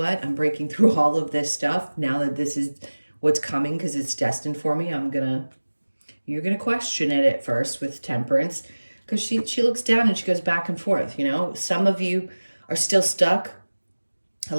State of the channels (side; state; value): both; inverted; correlation -1.00